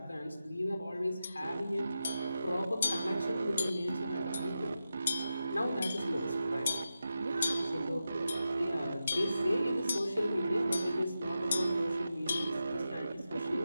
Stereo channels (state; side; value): inverted; both; correlation -0.90